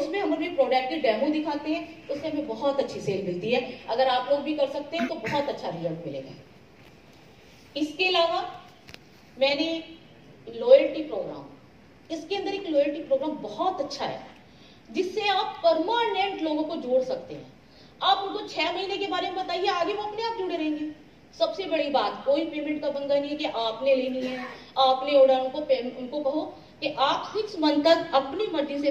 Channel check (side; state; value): both; identical; correlation 1.00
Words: हम अपने प्रोडक्ट की डेमो दिखाते हैं, उससे हमें बहुत अच्छी सेल मिलती है। अगर आप लोग भी कर सकते हैं तो बहुत अच्छा रिजल्ट मिलेगा। इसके अलावा मैंने लॉयल्टी प्रोग्राम, इसके अंदर एक लॉयल्टी प्रोग्राम बहुत अच्छा है, जिससे आप परमानेंट लोगों को जोड़ सकते हैं। आप उनको 6 महीने के बारे में बताइए, आगे वो अपने आप जुड़े रहेंगे। सबसे बड़ी बात, कोई पेमेंट का पंगा नहीं है कि आपने लेनी है, आपने ऑर्डर, उनको कहो कि आप 6 मंथ तक अपनी मर्जी